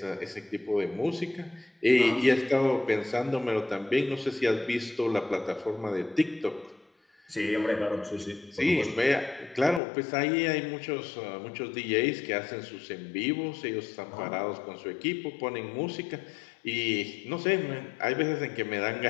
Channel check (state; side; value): drops out; right; at 9.8 s